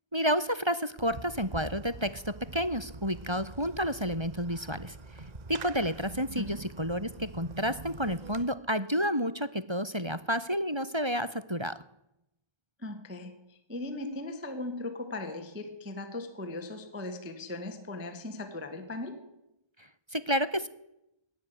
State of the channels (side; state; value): left; late; 1.3 ms